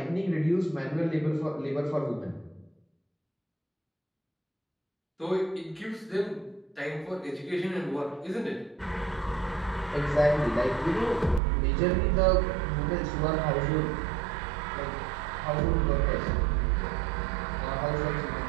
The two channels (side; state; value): left; drops out; at 11.4 s